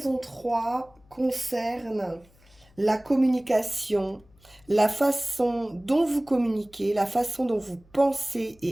3 concerne la communication, la façon dont vous communiquez, la façon dont vous pensez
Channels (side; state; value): left; noise; hum, 29 dB below the sound